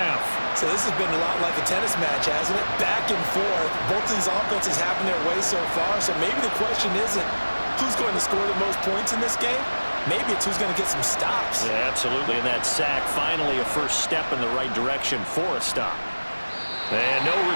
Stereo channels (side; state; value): both; inverted; correlation -1.00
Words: So this has been a lot like a tennis match, hasn't it? Back and forth. Both of these offenses having their way so far. So maybe the question isn't who's going to score the most points in this game. Maybe it's who's going to get some stops. Yeah, absolutely. And that sack, finally a first step in the right direction for a stop. And no